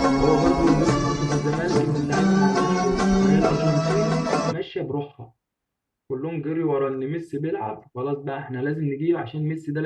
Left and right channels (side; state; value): both; identical; correlation 1.00